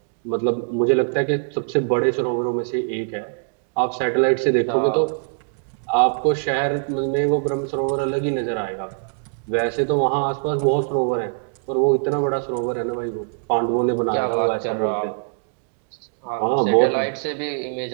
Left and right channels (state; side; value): silent; left; digital silence